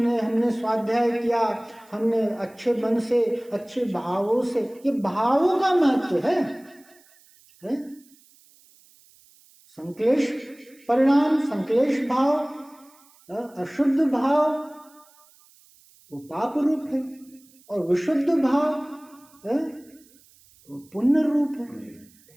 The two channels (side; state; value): right; noise; hiss, 29 dB below the sound